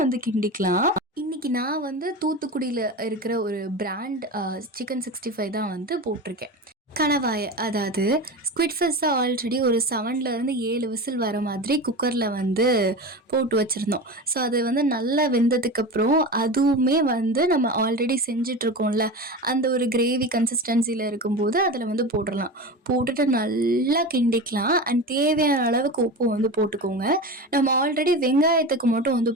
வந்து கிண்டிக்கலாம். இன்றைக்கி நான் வந்து தூத்துக்குடியில் இருக்கிற ஒரு பிராண்ட் சிக்கன் 65 தான் வந்து போட்டிருக்கேன். கணவாயை, அதாவது ஸ்குவிட் ஃபிஷ்ஷை ஆல்ரெடி ஒரு 7 விசில் வர மாதிரி குக்கரில் வந்து போட்டு வச்சுருந்தோம். ஸோ அது வந்து நல்லா வெந்ததுக்கப்புறம் அதுவுமே வந்து நம்ம ஆல்ரெடி செஞ்சிட்ருக்கோம்ல அந்த ஒரு கிரேவி கன்சிஸ்டன்சியில் இருக்கும்போது அதில் வந்து போட்டுடலாம். போட்டுட்டு நல்லா கிண்டிக்கலாம். அண்ட் தேவையான அளவுக்கு உப்பு வந்து போட்டுக்கோங்க. நம்ம ஆல்ரெடி வெங்காயத்துக்கு மட்டும் வந்து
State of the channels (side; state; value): both; normal; correlation 0.27